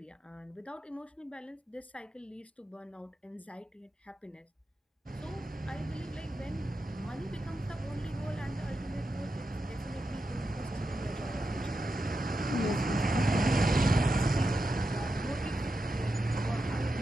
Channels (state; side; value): normal; both; correlation 0.88